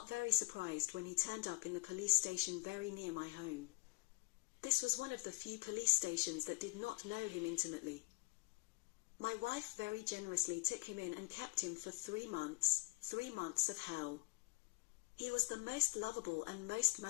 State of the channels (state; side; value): quieter; right; 24.5 dB